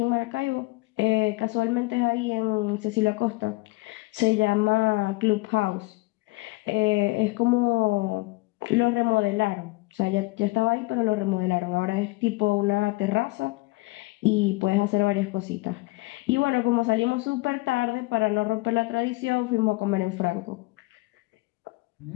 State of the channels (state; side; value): quieter; right; 22.9 dB